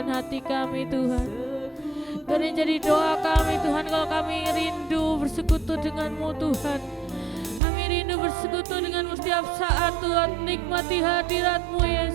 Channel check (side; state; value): left; drops out; at 7.6 s